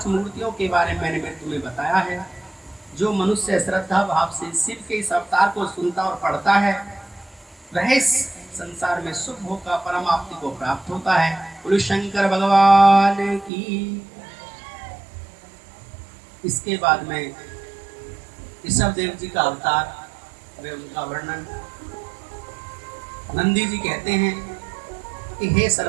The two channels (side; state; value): left; drops out; at 13.5 s